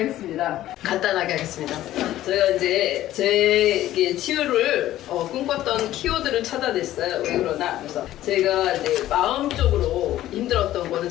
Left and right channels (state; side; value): quieter; right; 13.9 dB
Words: 간단하게 하겠습니다. 제가 이제 제 치유를 꿈꿨던 키워드를 찾아냈어요. 왜 그러나? 그래서 제가 이제 마음적으로 힘들었던 거는